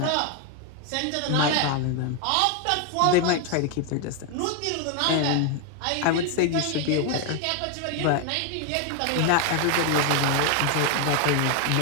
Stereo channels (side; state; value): both; different; correlation 0.01